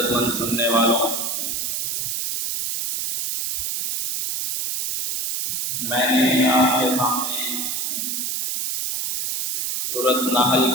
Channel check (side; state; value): right; noise; hiss, 2 dB below the sound